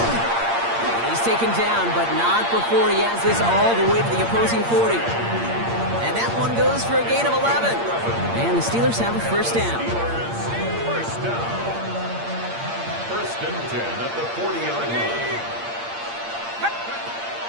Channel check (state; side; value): late; left; 8.7 ms